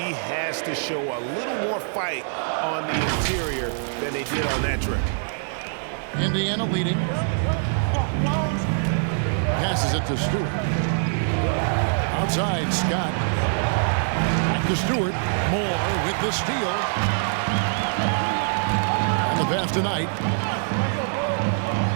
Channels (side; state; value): left; silent; 63 dB below the other